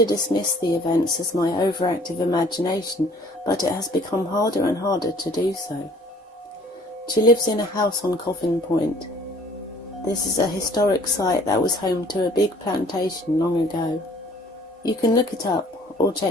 dismiss the events as my overactive imagination, but it has become harder and harder to do so. She lives in a house on Coffin Point. This is a historic site that was home to a big plantation long ago. You can look it up or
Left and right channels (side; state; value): both; normal; correlation 0.55